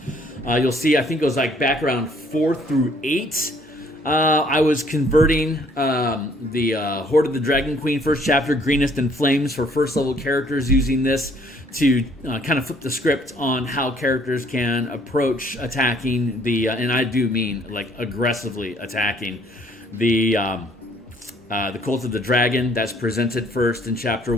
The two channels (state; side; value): normal; both; correlation 0.61